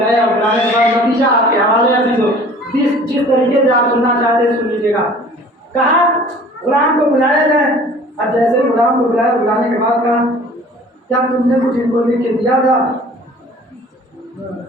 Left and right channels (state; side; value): normal; both; correlation 0.48